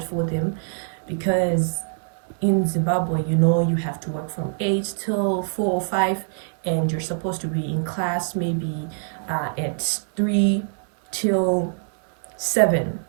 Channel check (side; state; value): left; silent; digital silence